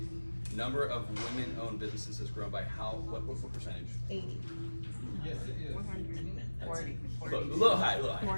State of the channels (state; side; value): inverted; both; correlation -1.00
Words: number of women-owned businesses has grown by what percentage? 80. Yes, it is. 40. A little high, a little high.